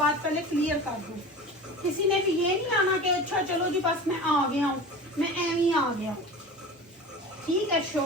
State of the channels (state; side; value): normal; both; correlation 0.34